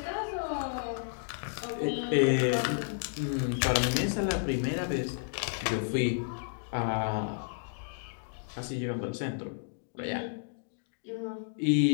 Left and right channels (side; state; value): right; silent; digital silence